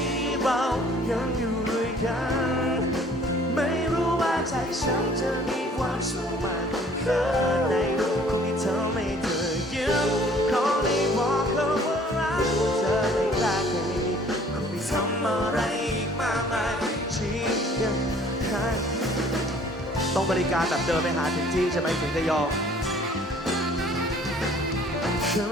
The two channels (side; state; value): both; normal; correlation 0.55